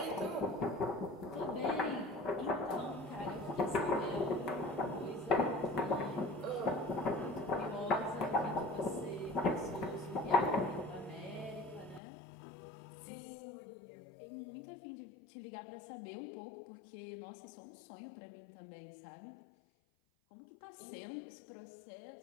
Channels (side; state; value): right; drops out; at 12.0 s